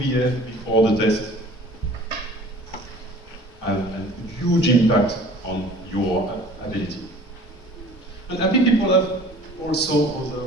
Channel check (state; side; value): normal; both; correlation 0.47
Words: before the test have a huge impact on your ability. And happy people have also